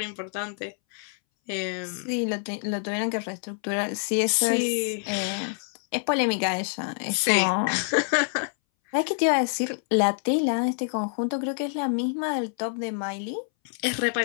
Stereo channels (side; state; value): right; silent; 60 dB below the other